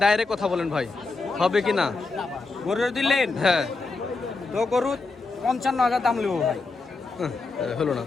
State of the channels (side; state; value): right; quieter; 3.8 dB